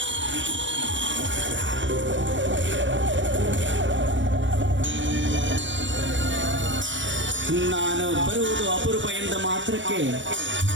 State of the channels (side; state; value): left; late; 0.55 ms